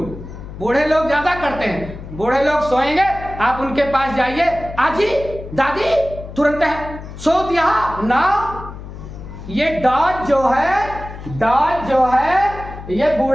बूढ़े लोग ज्यादा करते हैं। बूढ़े लोग सोएंगे, आप उनके पास जाइए, आजी दादी तुरंत है सो दिया ना। ये डॉज जो है, डॉज जो है, ये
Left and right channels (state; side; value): noise; left; hum, 12 dB below the sound